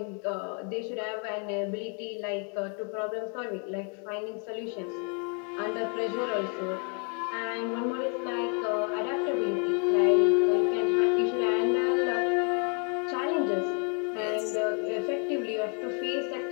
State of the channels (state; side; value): quieter; right; 39.2 dB